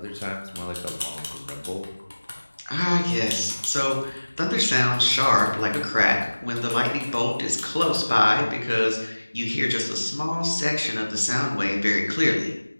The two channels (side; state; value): both; inverted; correlation -1.00